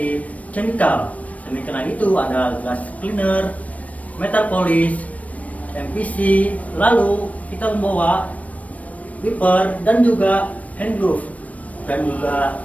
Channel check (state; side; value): late; right; 0.068 ms